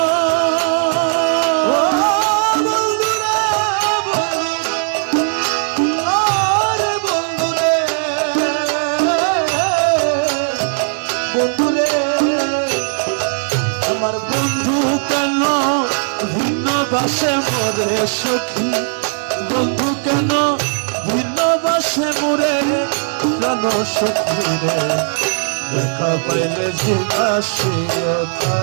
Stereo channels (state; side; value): silent; left; digital silence